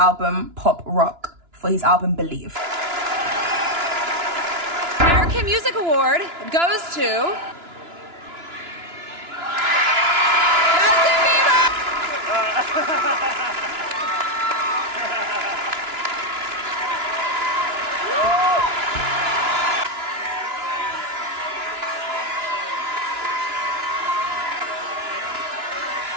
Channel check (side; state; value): left; late; 2.9 ms